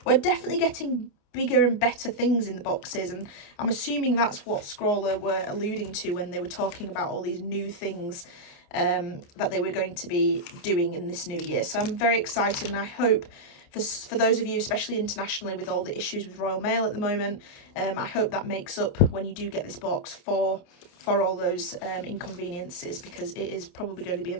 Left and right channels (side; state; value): right; late; 29 ms